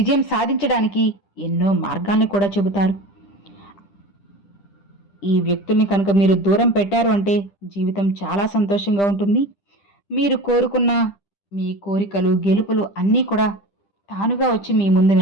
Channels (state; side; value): late; right; 10 ms